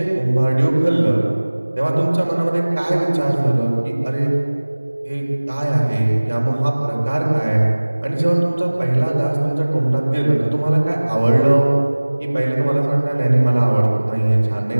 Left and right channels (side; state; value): both; inverted; correlation -1.00